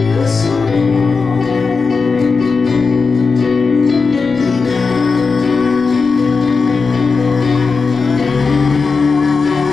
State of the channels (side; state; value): right; quieter; 4.6 dB